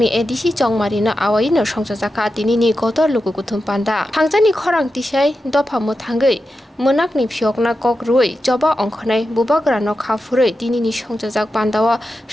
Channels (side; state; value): both; normal; correlation 0.90